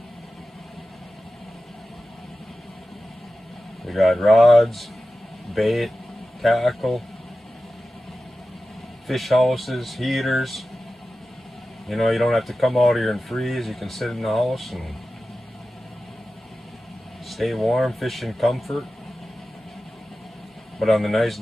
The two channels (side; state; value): both; normal; correlation 0.94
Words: We got rods, bait, tackle, fish houses, heaters. You know, you don't have to come out here and freeze. You can sit in the house and stay warm, fish in comfort. But on the nice